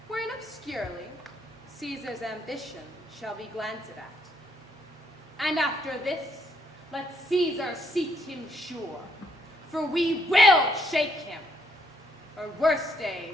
wherein obscurely Caesar's ambition shall be glanced at. And after this, let Caesar seat him sure, for we will shake him, or worse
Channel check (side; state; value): both; normal; correlation 0.71